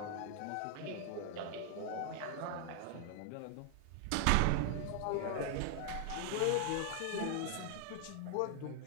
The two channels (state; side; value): different; both; correlation 0.00